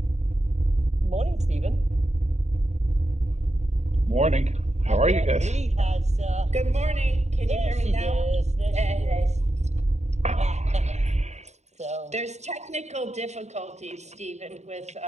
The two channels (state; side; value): late; left; 0.32 ms